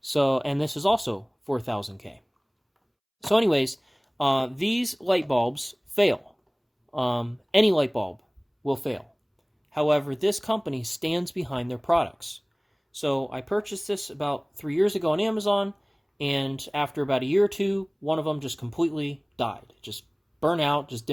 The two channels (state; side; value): identical; both; correlation 1.00